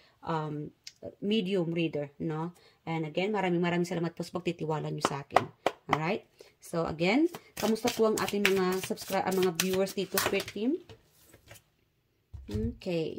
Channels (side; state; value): both; identical; correlation 1.00